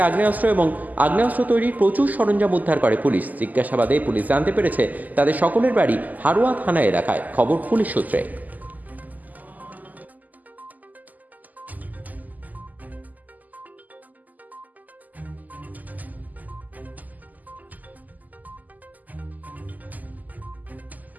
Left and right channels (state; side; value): late; left; 0.081 ms